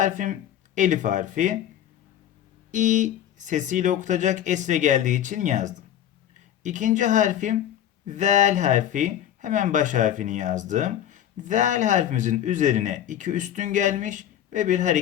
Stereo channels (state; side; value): quieter; right; 10.9 dB